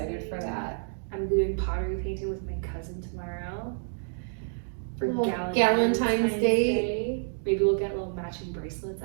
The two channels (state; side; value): silent; left; digital silence